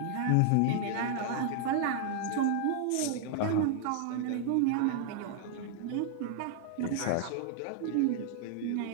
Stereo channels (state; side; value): different; both; correlation 0.00